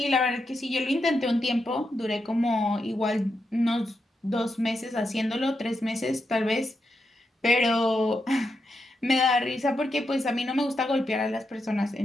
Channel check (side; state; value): both; normal; correlation 0.85